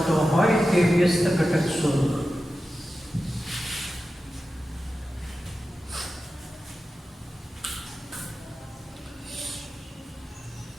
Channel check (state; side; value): normal; both; correlation 0.93